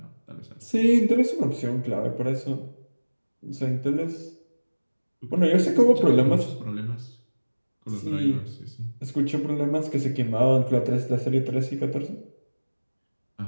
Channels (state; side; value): inverted; both; correlation -1.00